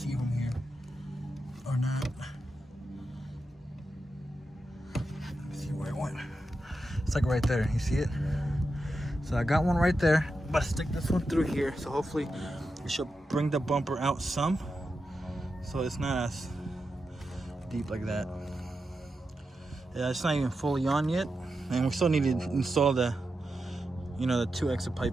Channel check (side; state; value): both; normal; correlation 0.88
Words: from here or not. Let me see where it went. It's like right there, you see it? So I got one right there, but I stick this one through here, so hopefully it should bring the bumper out some, so it's not as deep like that. Yeah, it's not even fully on yet, and we still need to install the, you know, the 2 extra